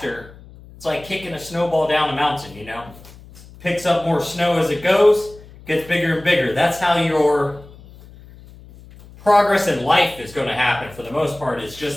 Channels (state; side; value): noise; left; hum, 21 dB below the sound